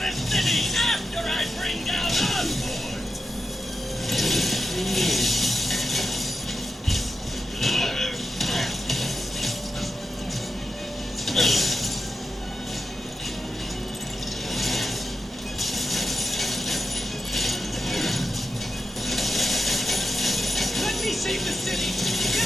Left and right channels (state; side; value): normal; both; correlation 0.89